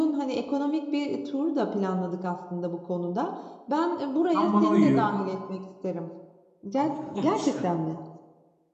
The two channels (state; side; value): identical; both; correlation 1.00